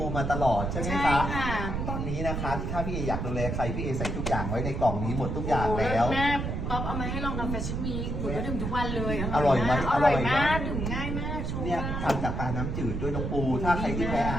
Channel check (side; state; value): right; noise; rumble, 2 dB below the sound